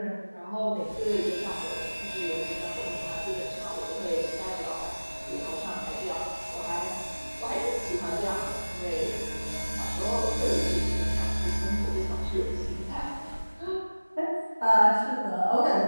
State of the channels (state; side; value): inverted; both; correlation -1.00